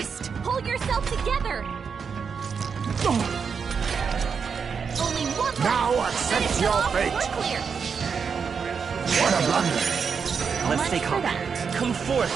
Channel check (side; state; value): left; quieter; 6.1 dB